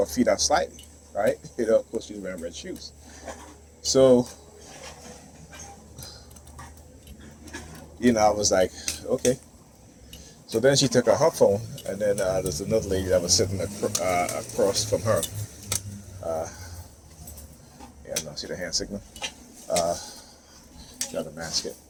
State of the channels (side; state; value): both; identical; correlation 1.00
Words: feet out slightly, right? Of course she's wearing red shoes. So, I was like, okay. So then she took out her phone, and then there's another lady that was sitting across from her. No, see the hand signal? Trying to mask it,